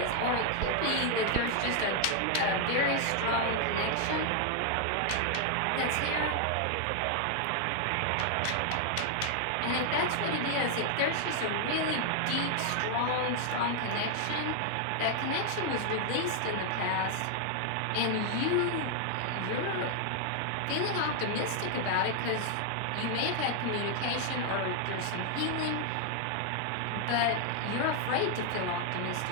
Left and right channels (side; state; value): both; different; correlation 0.00